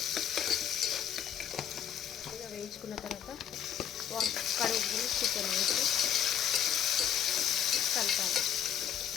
ఇలా వేయించుకున్న తర్వాత కడుగు చికెన్ వేసి కలపాలి.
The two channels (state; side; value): quieter; right; 9.5 dB